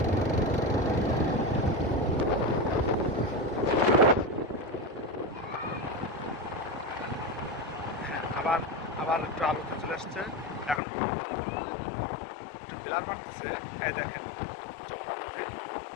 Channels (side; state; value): right; drops out; at 10.8 s